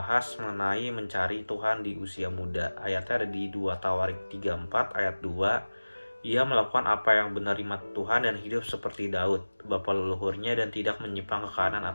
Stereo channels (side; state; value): both; inverted; correlation -1.00